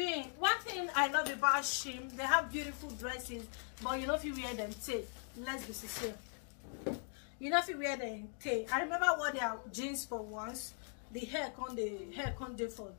One thing I love about Shein, they have beautiful dresses, but you know if you wear them, take. Let's be sincere. You know if you wear them, take. I remember what their jeans for once. The hair can't do for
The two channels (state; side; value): silent; right; 51 dB below the other